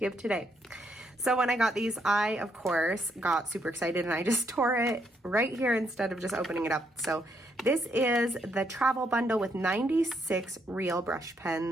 today. So when I got these, I, of course, got super excited and I just tore it right here instead of just opening it up. So this is the travel bundle with 96 real brush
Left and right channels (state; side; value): normal; both; correlation 0.74